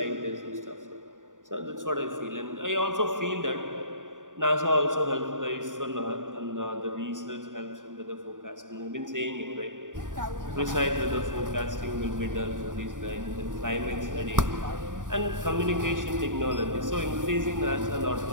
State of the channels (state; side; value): late; left; 0.88 ms